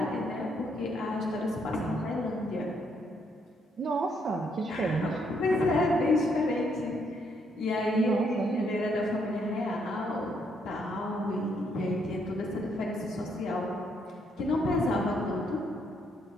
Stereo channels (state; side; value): normal; both; correlation 0.73